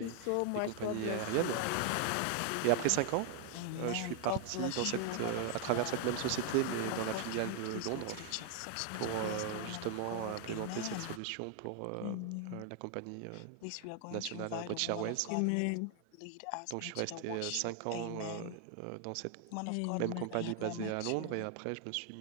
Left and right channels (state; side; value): different; both; correlation 0.00